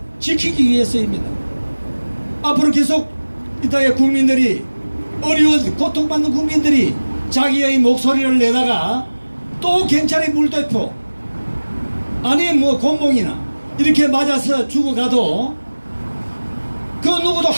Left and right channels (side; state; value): both; inverted; correlation -1.00